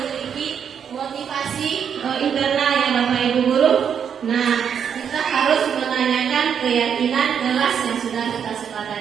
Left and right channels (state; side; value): quieter; left; 7.7 dB